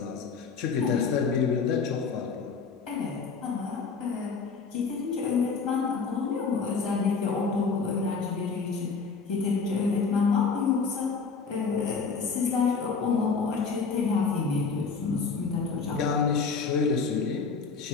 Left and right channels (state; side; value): quieter; right; 5.1 dB